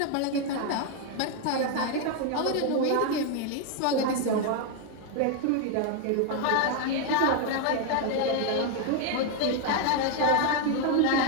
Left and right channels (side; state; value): both; different; correlation 0.00